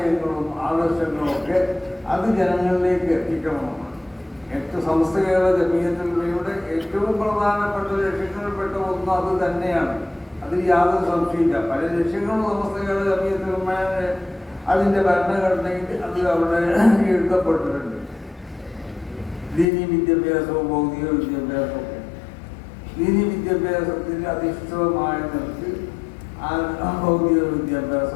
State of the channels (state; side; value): drops out; right; at 19.7 s